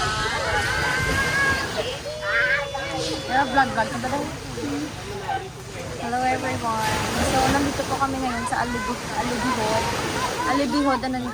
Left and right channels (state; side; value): identical; both; correlation 1.00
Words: Pero vlog ka ba daw? Hello everyone. So, nandito po kami ngayon sa Alibihod. Alibihod, ano ni